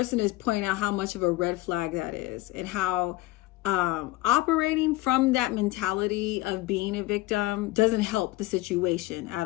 is pointing out how much of a red flag that is, and how operating from that mentality of being a victim doesn't help the situation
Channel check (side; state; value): right; quieter; 19.0 dB